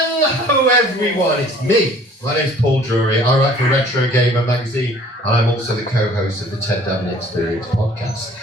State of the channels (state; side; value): normal; both; correlation 0.53